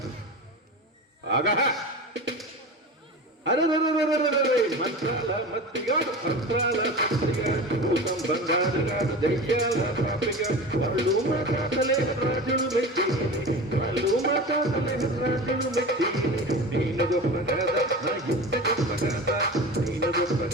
ఆగా మంత్రాల మత్తిగాడు, తంత్రాల సత్తిగాడు, భూతం బంగారుగాడు, దయ్యాల పాపిగాడు, వాళ్ళు మా తాతలే రాజులు మెచ్చిరి, వాళ్ళు మా తాతలే రాజులు మెచ్చిరి. నేను గొప్ప కదా నా ఇంత గొప్ప కదా, నేను గొప్ప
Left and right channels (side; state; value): both; normal; correlation 0.31